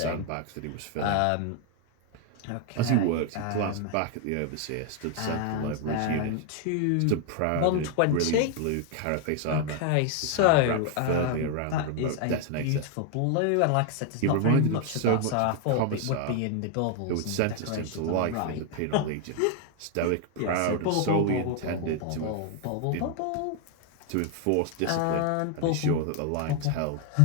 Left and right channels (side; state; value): both; different; correlation 0.00